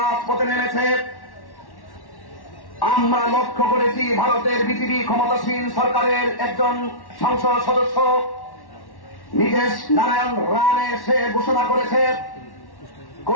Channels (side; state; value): right; late; 1.1 ms